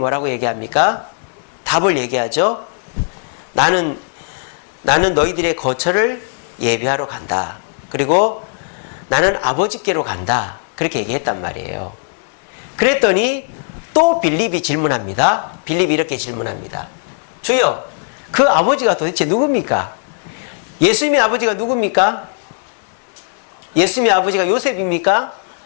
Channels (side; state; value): right; silent; 68 dB below the other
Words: 얘기합니까? 답을 얘기하죠. 나는 너희들의 거처를 예비하러 간다. 그리고 나는 아버지께로 간다. 그렇게 얘기했단 말이에요. 그랬더니 또 빌립이 질문합니다. 빌립이 이렇게 질문합니다. 주여, 그 아버지가 도대체 누굽니까? 예수님의 아버지가 누굽니까? 예수님의 아버지가 요셉입니까?